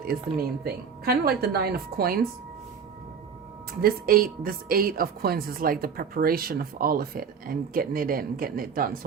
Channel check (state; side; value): quieter; left; 6.6 dB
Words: is the main thing. Kind of like the 9 of Coins. This eight of Coins is like the preparation of all of it and getting it in, getting it done.